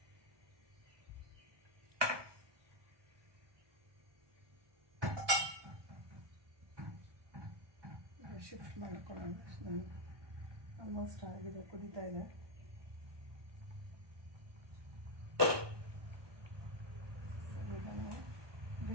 ಶಿಫ್ಟ್ ಮಾಡ್ಕೊಳ್ಳೋಣ. ಆಲ್ಮೋಸ್ಟ್ ಆಗಿದೆ, ಕುದೀತಾ ಇದೆ. ಇದನ್ನು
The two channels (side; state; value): left; late; 1.2 ms